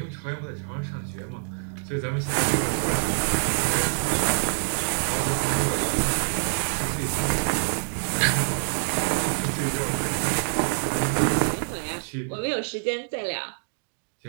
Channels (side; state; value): left; silent; digital silence